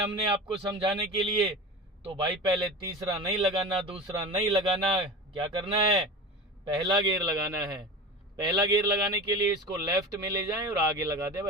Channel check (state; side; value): normal; both; correlation 0.31